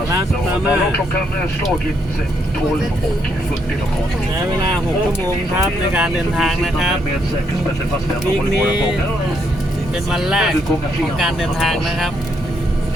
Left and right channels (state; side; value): normal; both; correlation 0.75